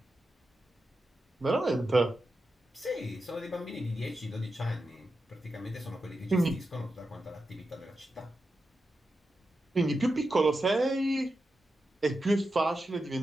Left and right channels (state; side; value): normal; both; correlation 0.89